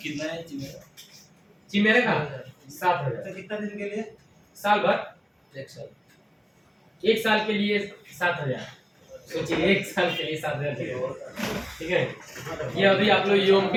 कितना है चिमेरा? चिमेरा का 7,000। तो कितना दिन के लिए? साल भर, 1 साल। 1 साल के लिए 7,000। सोचिए 1 साल के लिए 7,000। ठीक है, ये अभी आप लोग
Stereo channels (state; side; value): identical; both; correlation 1.00